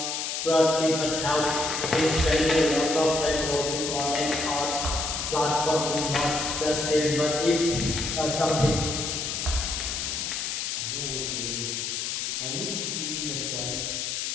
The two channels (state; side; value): noise; left; hiss, 2 dB below the sound